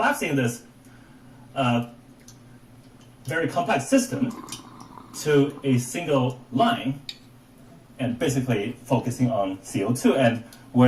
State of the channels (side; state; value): both; identical; correlation 1.00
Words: this very complex system to a single line and basically focusing on CO2. And we